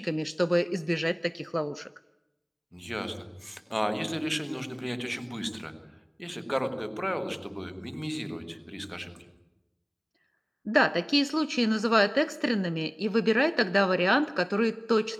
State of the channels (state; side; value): identical; both; correlation 1.00